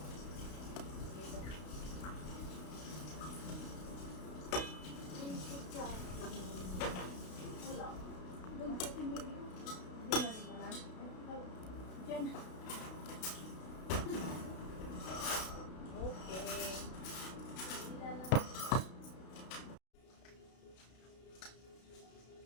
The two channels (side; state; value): right; late; 32 ms